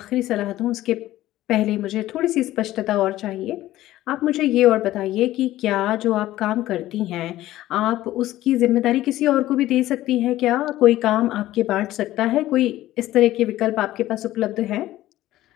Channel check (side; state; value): right; quieter; 15.1 dB